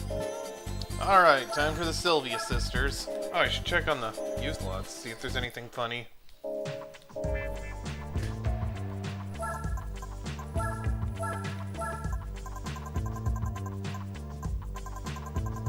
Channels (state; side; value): identical; both; correlation 1.00